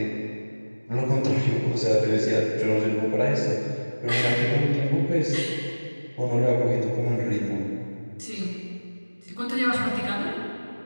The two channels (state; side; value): inverted; both; correlation -1.00